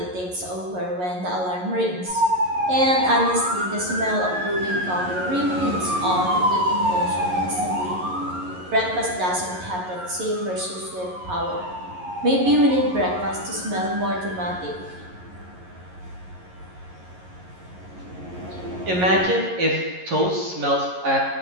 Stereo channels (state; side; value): late; left; 11 ms